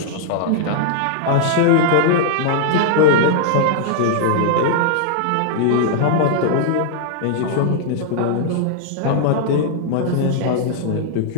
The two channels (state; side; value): different; both; correlation -0.01